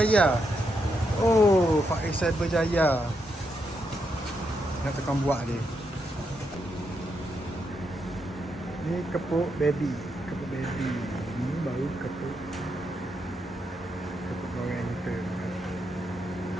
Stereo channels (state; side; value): normal; both; correlation 0.81